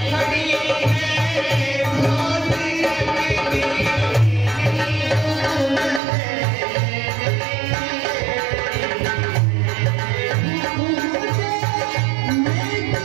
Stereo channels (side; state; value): left; drops out; at 6.0 s